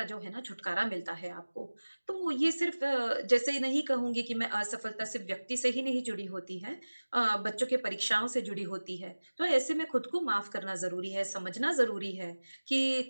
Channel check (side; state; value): both; inverted; correlation -1.00